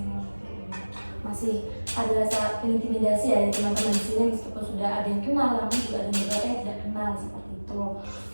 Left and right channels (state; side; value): inverted; both; correlation -1.00